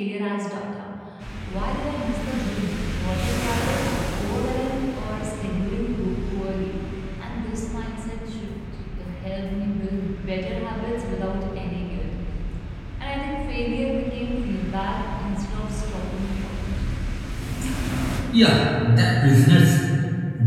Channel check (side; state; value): both; identical; correlation 1.00